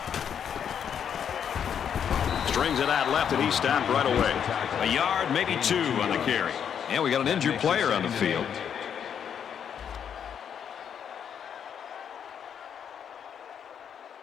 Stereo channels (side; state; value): right; quieter; 8.2 dB